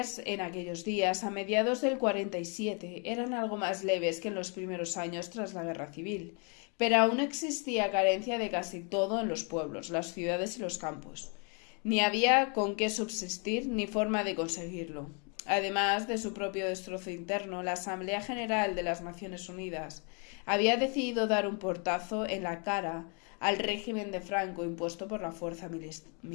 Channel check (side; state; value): right; quieter; 36.2 dB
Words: en aquellos días, a mediados del 47, eran algo más leves que en los primeros años tras la Guerra Civil, pero aún existía carencia de casi todo en los pueblos, las ciudades y los campos. Ni había con qué subsistir ni forma de conseguirlo. Además de su propio destrozo interno, la Asamblea General de las Naciones Unidas había decidido dar un portazo en la cara al régimen de Franco impuesto por la fuerza